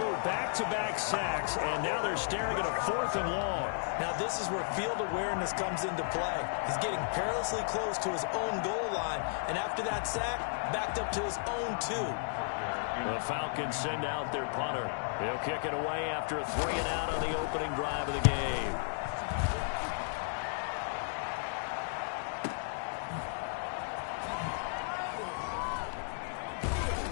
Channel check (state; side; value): silent; right; digital silence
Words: Back-to-back sacks, and now they're staring at a fourth and long. Now this is where field awareness comes into play. He's getting perilously close to his own goal line, and after that sack, backed up to his own 2. The Falcons send out their punter. He'll kick it away after a 3 and out on the opening drive of the game.